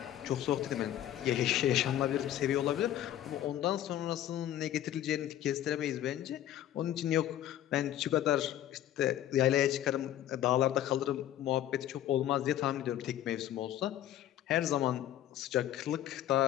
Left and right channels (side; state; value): right; quieter; 12.2 dB